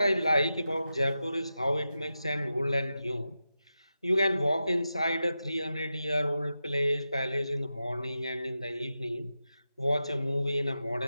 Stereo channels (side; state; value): both; inverted; correlation -0.91